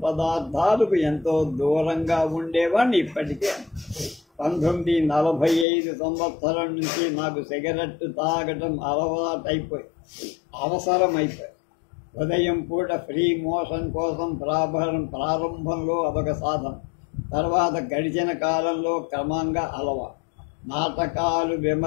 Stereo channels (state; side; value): drops out; right; at 5.7 s